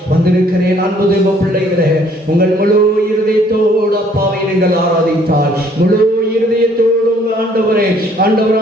வந்திருக்கிறேன். அன்பு தேவ பிள்ளைகளே, உங்கள் முழு இருதயத்தோடு அப்பாவை நீங்கள் ஆராதித்தால், முழு இருதயத்தோடு உங்கள்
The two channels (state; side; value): normal; both; correlation 0.61